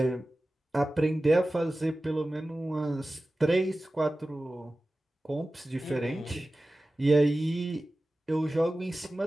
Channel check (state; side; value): normal; both; correlation 0.96